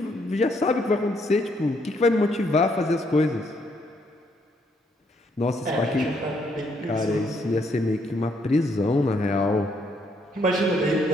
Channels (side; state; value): both; normal; correlation 0.72